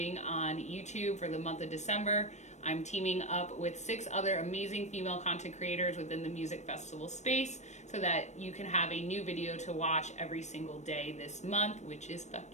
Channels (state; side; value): late; right; 0.34 ms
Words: on YouTube for the month of December. I'm teaming up with 6 other amazing female content creators within the music festival space so that you can have a new video to watch every single day this month, which is